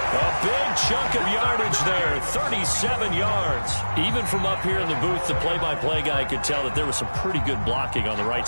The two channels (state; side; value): inverted; both; correlation -1.00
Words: A big chunk of yardage there, 37 yards. Even from up here in the booth, the play-by-play guy could tell that there was some pretty good blocking on the right